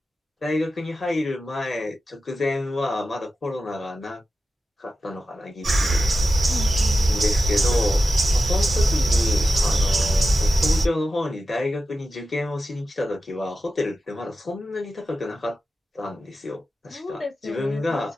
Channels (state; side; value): normal; both; correlation 0.92